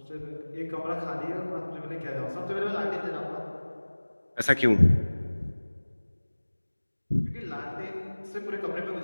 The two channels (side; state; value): both; inverted; correlation -1.00